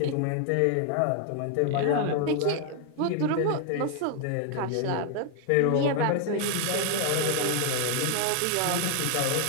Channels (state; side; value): different; both; correlation 0.00